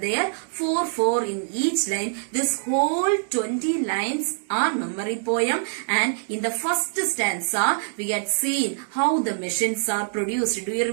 4 in each line. This whole 20 lines are memory poem, and in the first stanza, we had seen how the machines are produced. Do you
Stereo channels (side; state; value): left; silent; digital silence